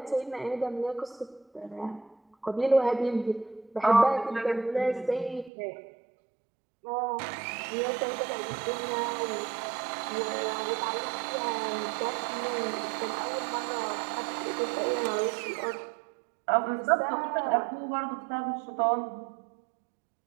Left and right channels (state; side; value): drops out; left; at 5.5 s